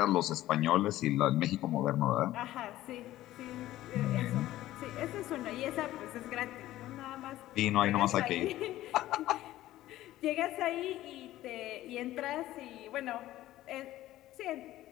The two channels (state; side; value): quieter; right; 15.0 dB